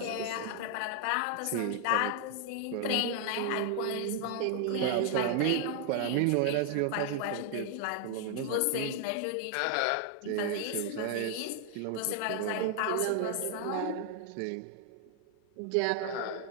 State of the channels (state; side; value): different; both; correlation 0.00